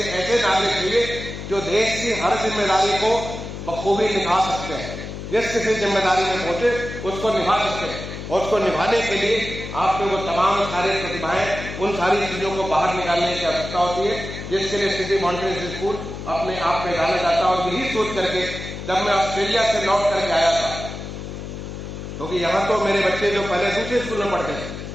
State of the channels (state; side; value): noise; left; hum, 9 dB below the sound